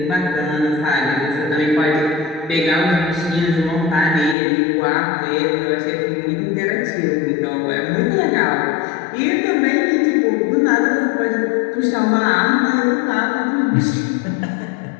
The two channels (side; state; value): right; drops out; at 4.4 s